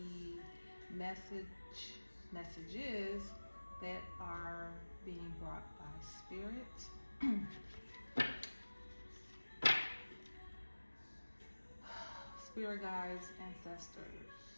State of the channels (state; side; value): inverted; both; correlation -1.00